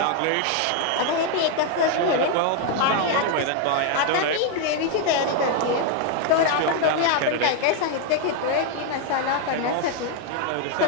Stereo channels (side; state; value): both; different; correlation 0.00